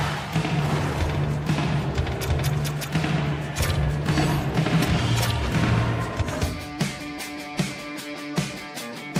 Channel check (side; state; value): both; identical; correlation 1.00